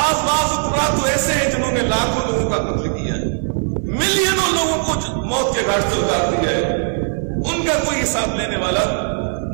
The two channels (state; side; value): silent; left; 57 dB below the other